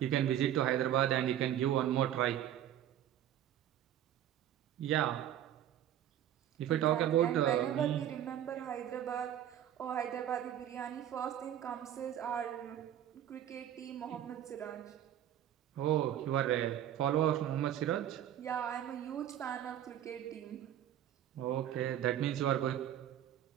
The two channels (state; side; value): quieter; left; 11.1 dB